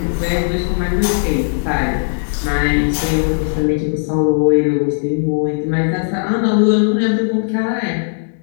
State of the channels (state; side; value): silent; right; digital silence